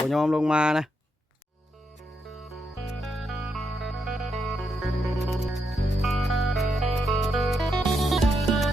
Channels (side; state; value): both; normal; correlation 0.81